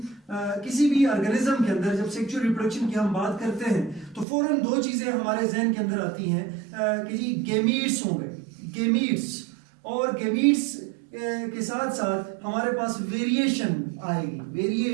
किसी भी ऑर्गेनिज्म के अंदर जब सेक्सुअल रिप्रोडक्शन की हम बात करते हैं तो फौरन दो चीज़ें हमारे जहन के अंदर आती हैं कि जी गेमीट्स होंगे, गेमीट्स, और गेमीट्स के साथ साथ हमारे पास वेरिएशन आएगी,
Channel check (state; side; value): drops out; left; at 4.2 s